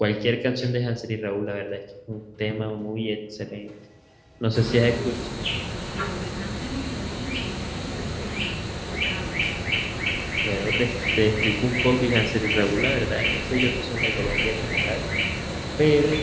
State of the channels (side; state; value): both; identical; correlation 1.00